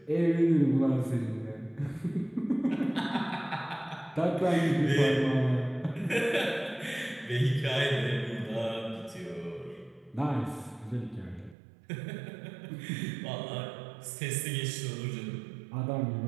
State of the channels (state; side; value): drops out; left; at 11.6 s